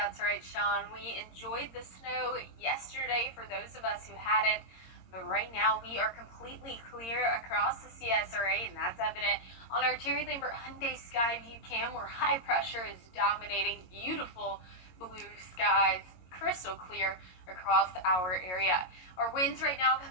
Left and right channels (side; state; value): right; late; 22 ms